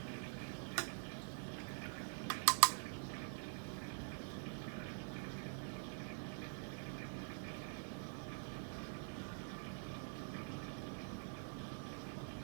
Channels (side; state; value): left; silent; digital silence